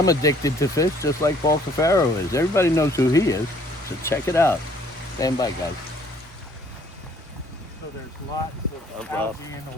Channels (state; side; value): normal; both; correlation 0.60